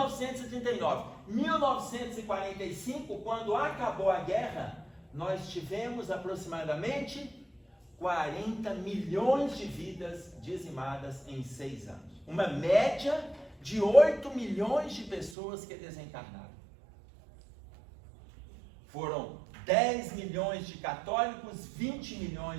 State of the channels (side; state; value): left; drops out; at 15.4 s